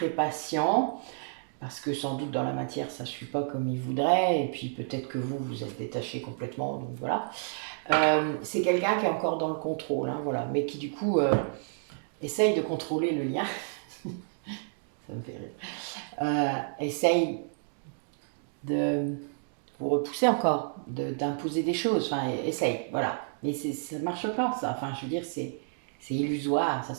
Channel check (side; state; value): left; silent; digital silence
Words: patient, parce que sans doute dans la matière ça ne suit pas comme il voudrait, et puis peut-être que vous êtes détaché complètement, donc voilà. C'est quelqu'un qui est encore dans le contrôle, hein, voilà, mais qui du coup essaye de contrôler le lien, ça me fait rire, essaye de vous repousser encore, d'imposer des choses, enfin essaye, voilà, mais ça ne marche pas ça, enfin je veux dire c'est c'est illusoire, ça